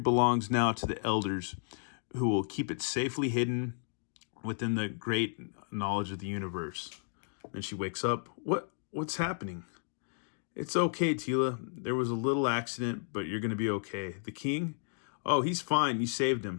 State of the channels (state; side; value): silent; right; digital silence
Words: now to the elders, who will keep it safely hidden within the great knowledge of the universe. And she wakes up. What's happening? It's okay, Teela. There was a little accident, but you're going to be okay. The king? Oh, he's fine. You saved